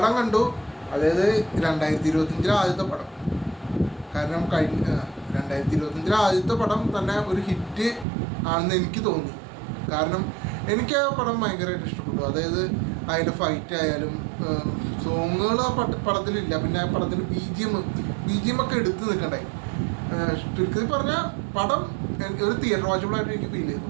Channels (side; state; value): left; drops out; at 8.1 s